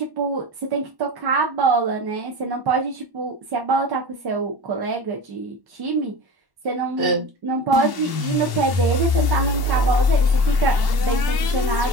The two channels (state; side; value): late; left; 1.1 ms